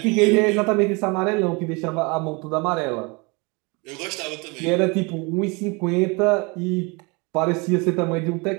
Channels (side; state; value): left; quieter; 28.5 dB